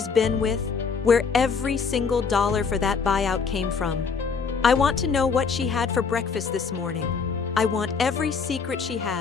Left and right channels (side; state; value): right; quieter; 5.5 dB